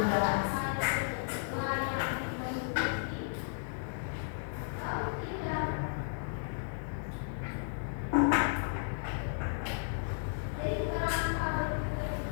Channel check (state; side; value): silent; right; digital silence